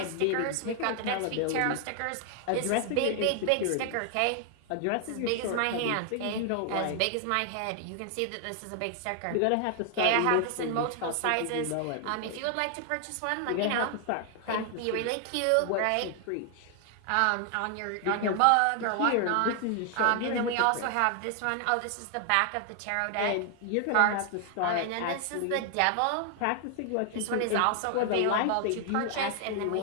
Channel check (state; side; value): different; both; correlation 0.00